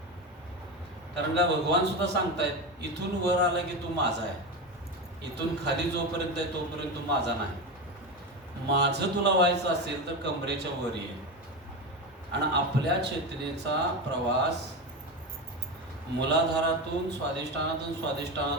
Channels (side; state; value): both; normal; correlation 0.19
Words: कारण का भगवान सुद्धा सांगतायत, इथून वर आला की तू माझा आहे, इथून खाली जोपर्यंत आहे तोपर्यंत तू माझा नाही. माझं तुला व्हायचं असेल तर कमरेच्या वर ये. आणि आपल्या चेतनेचा प्रवास मूलाधारातून